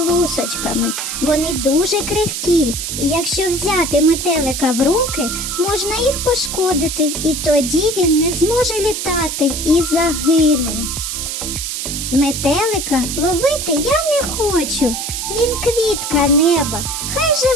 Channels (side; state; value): right; noise; hiss, 4 dB below the sound